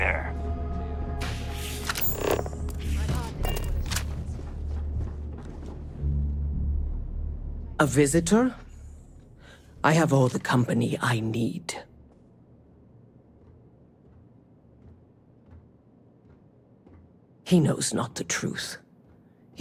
A visitor? I have all the company I need. He knows not the truth.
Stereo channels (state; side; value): identical; both; correlation 1.00